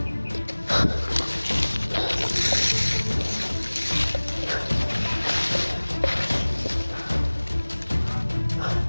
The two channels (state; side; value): inverted; both; correlation -1.00